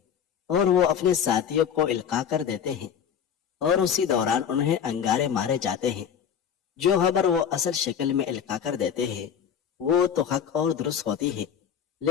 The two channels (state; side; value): quieter; right; 8.1 dB